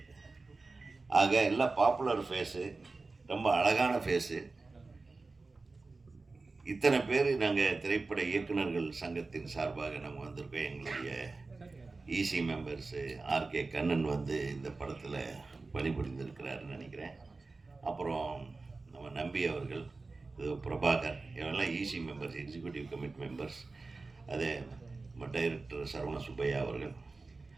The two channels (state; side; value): quieter; left; 3.7 dB